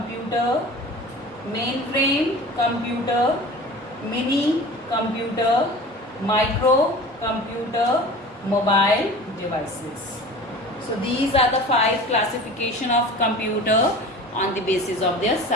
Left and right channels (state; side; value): normal; both; correlation 0.38